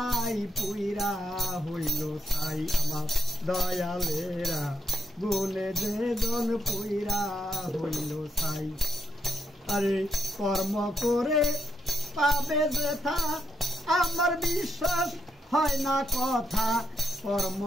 পুইরা হইল সাই আমার দয়ালেরা গুনে যেজন পুইরা হইল সাই। আরে কর্ম করে পাবে যেথা আমার বিশ্বাস হয় না কথা, কর্ম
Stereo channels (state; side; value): normal; both; correlation 0.80